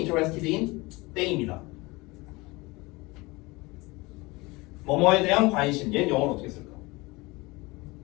in 땡입니다. 뭐뭐에 대한 관심. 얘는 영어로 어떻게 쓸까?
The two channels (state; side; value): quieter; right; 23.4 dB